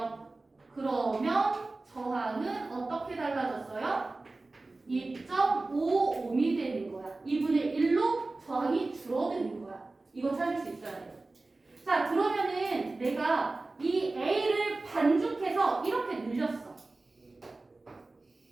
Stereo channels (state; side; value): quieter; left; 3.3 dB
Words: 그러면 저항은 어떻게 달라졌어요? 2.55옴이 되는 거야. 2분의 1로 저항이 줄어드는 거야. 이거 찾을 수 있어야 돼. 자, 그러면은 내가 이 A를 반죽해서 이렇게 늘렸어.